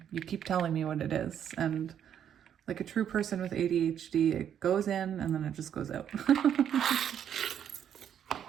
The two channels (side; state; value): left; quieter; 9.2 dB